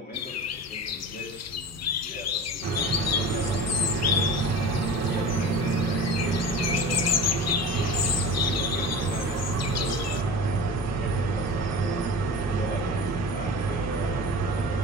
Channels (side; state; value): both; normal; correlation 0.35